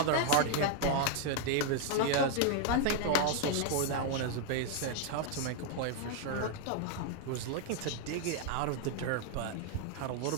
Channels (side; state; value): both; different; correlation 0.00